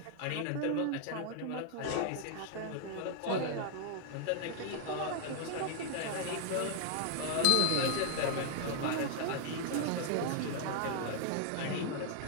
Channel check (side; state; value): both; different; correlation 0.00